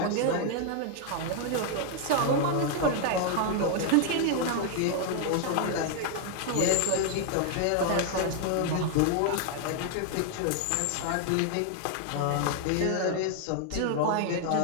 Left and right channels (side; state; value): both; different; correlation 0.00